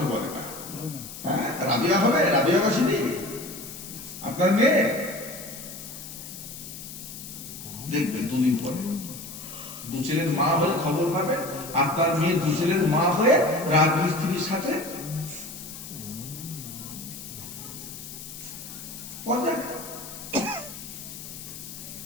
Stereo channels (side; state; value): left; noise; hiss, 12 dB below the sound